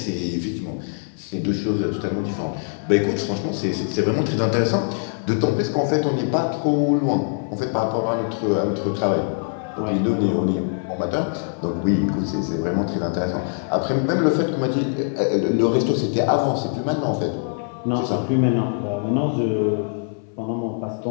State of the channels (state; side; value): silent; right; 58 dB below the other